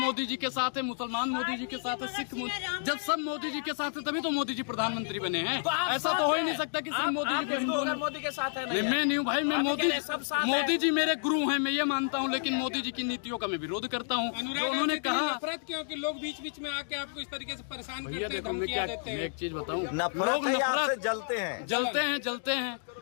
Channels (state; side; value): silent; right; digital silence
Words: जी के साथ है, मुसलमान मोदी जी के साथ है, सिख जब सब मोदी जी के साथ है तभी तो मोदी जी प्रधानमंत्री बने हैं। ऐसा तो हो ही नहीं सकता कि सिर्फ मोदी जी को हिंदुओं ने। मोदी के साथ है नहीं, मैं नहीं हूँ भाई, मैं मोदी जी मेरे गुरु हैं, मैं ये मानता हूँ, लेकिन मोदी जी की नीतियों का मैं विरोध करता हूँ। जो उन्होंने कहा नफरत क्यों कि लोग बीच बीच में आके आपको इस तरीके से परेशान भैया करते हैं, देखो, मैं धमकियां देते मैं हैं। एक चीज बताऊं, नफरत लोग है या आपसे नफरत जलते हैं।